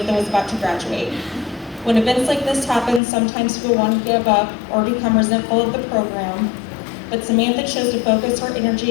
was about to graduate. When events like this happen, sometimes people want to give up or become resentful of the program. but Samantha chose to focus her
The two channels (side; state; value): right; drops out; at 3.0 s